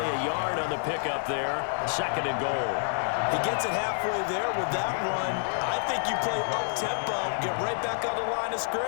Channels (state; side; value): silent; right; digital silence